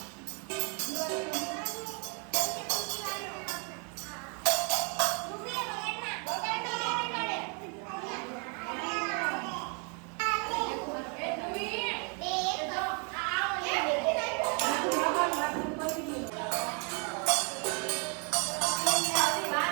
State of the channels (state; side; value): quieter; left; 36.8 dB